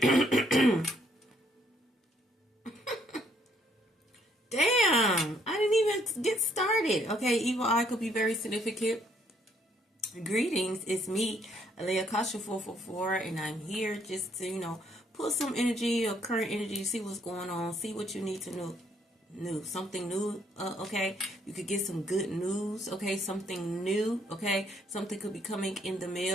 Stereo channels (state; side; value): normal; both; correlation 0.69